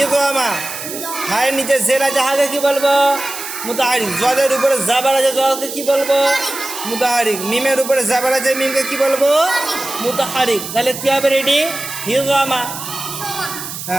হায়ের নিচে জের আছে হাকে কি বলবো? মুতাহারিক। জদের উপরে জাবার আছে জকে কি বলবো? মুতাহারিক। মিমের উপরে জাবার আছে মিমকে কি বলবো? মুতাহারিক। তাহলে কি হবে? রেডি? হিজমা।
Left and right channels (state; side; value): noise; right; hiss, 9 dB below the sound